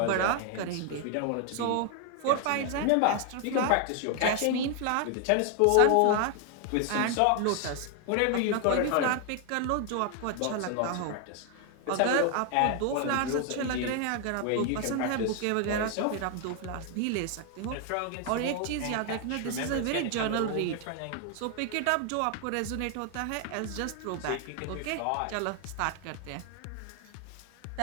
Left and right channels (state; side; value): different; both; correlation 0.00